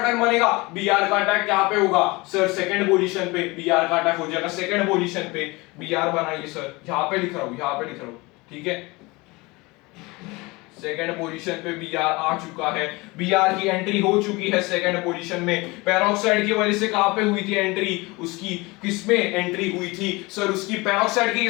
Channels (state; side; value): quieter; right; 23.8 dB